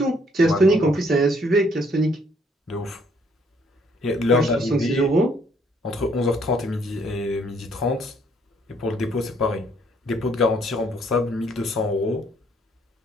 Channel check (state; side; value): normal; both; correlation 0.65